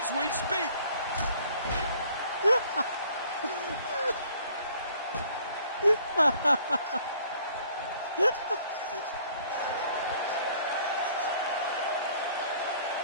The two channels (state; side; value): inverted; both; correlation -0.57